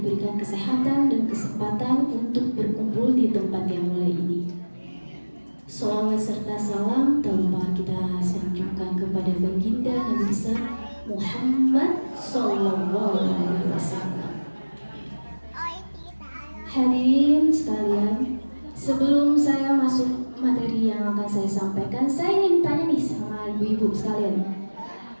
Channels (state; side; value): inverted; both; correlation -1.00